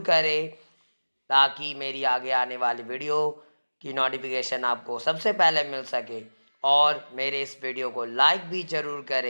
करें, ताकि मेरी आगे आने वाली वीडियो की नोटिफिकेशन आपको सबसे पहले मिल सके, और मेरे इस वीडियो को लाइक भी ज़रूर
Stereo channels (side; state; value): both; inverted; correlation -1.00